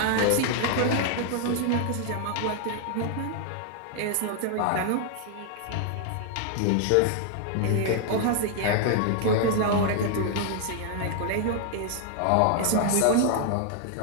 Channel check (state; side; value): different; both; correlation 0.00